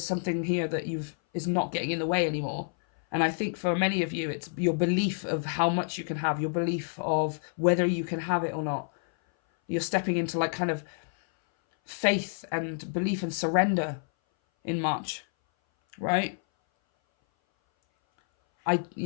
something here that is not getting in the way anymore. And I think for many of you, it's your belief of how much you can have, your belief of whether you can have it or not. You're stepping into like kind of faith and belief and surrender in March, right? I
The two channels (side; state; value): right; silent; 58 dB below the other